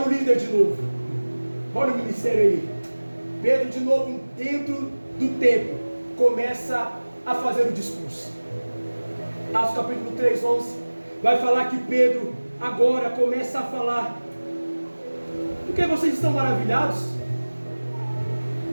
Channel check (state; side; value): inverted; both; correlation -1.00